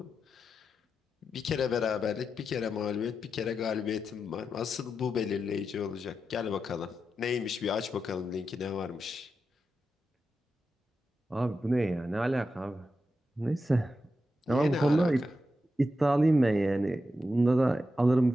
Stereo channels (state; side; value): normal; both; correlation 0.88